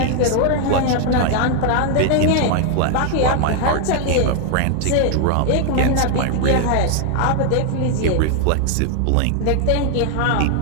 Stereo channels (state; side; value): different; both; correlation 0.00